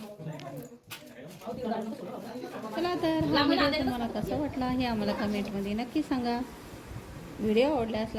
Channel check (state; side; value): identical; both; correlation 1.00